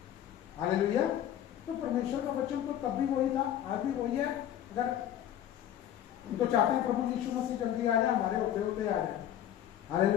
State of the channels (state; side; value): quieter; right; 11.0 dB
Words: हालेलुया। तो परमेश्वर का वचन तो तब भी वही था, आज भी वही है। अगर हम तो चाहते हैं प्रभु यीशु मसीह जल्दी आ जाए, हमारे होते होते आ जाए।